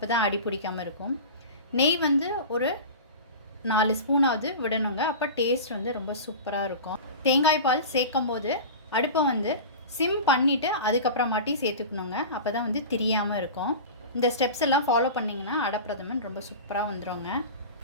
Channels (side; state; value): both; inverted; correlation -0.31